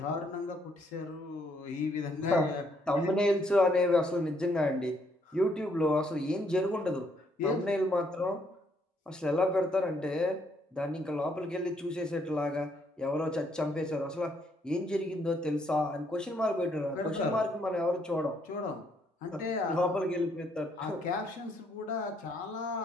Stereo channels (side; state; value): both; normal; correlation 0.71